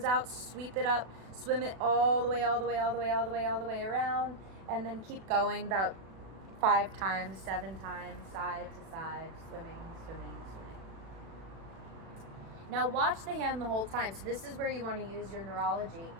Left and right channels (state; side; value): late; left; 36 ms